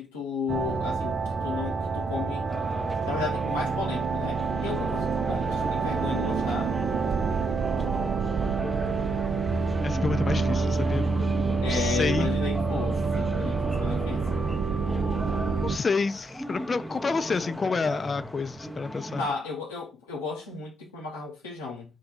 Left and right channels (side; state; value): both; normal; correlation 0.78